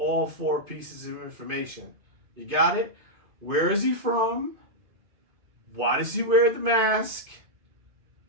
4 pieces of information. You got it? Where is he from? Why does he wear the mask?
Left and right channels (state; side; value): late; left; 2.5 ms